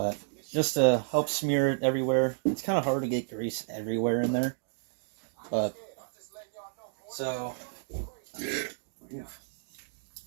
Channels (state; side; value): silent; left; digital silence